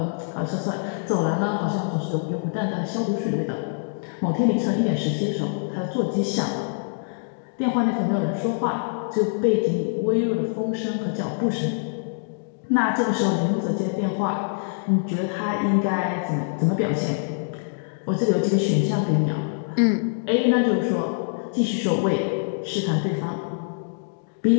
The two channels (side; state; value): right; silent; digital silence